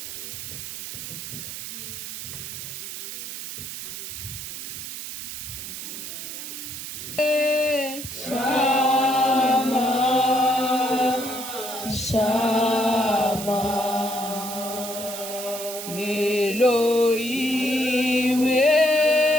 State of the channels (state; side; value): noise; right; hiss, 8 dB below the sound